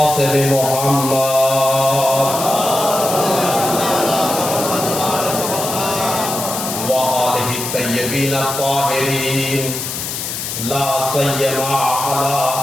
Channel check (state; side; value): noise; left; hiss, 5 dB below the sound